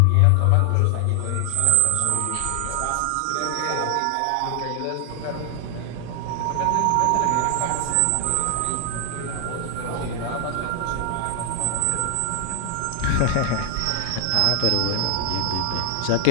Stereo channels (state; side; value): different; both; correlation 0.00